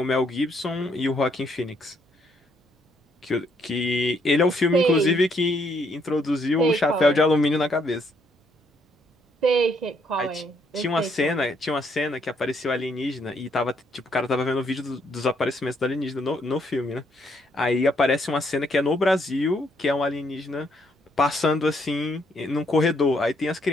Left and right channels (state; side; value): normal; both; correlation 0.71